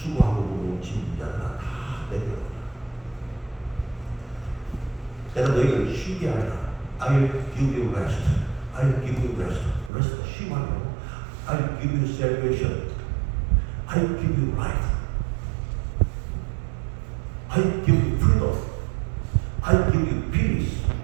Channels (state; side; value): drops out; left; at 9.9 s